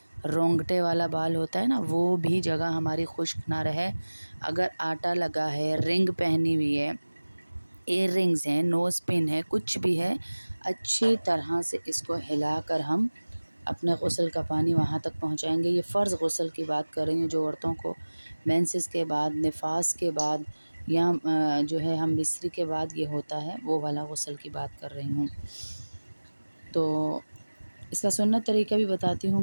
رونگٹے والا بال ہوتا ہے نا، وہ بھی جگہ ہماری خشک نہ رہے۔ اگر آٹا لگا ہے، رنگ پہنی ہوئی ہے، ایئر رنگز ہیں، نوز پن ہے، کچھ بھی ہے، اچھی طرح سے اس کو ہلا کر ہم اپنے غسل کا پانی وہاں تک پہنچائیں گے۔ یہ فرض غسل کی بات کر رہی ہوں، جو عورتوں کو مینسز کے بعد، نفاس کے بعد یا جو ہے ہم بستری کے بعد یہ ہوتا ہے، وہ والا غسل کی بات کر رہی ہوں۔ تو اس کا سنت طریقہ بھی بتاتی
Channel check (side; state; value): both; inverted; correlation -1.00